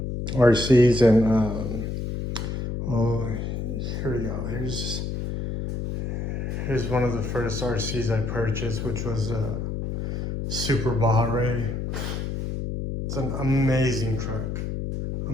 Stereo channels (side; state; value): left; noise; hum, 4 dB below the sound